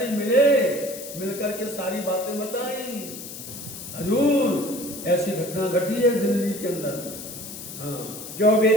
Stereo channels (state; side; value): noise; left; hiss, 11 dB below the sound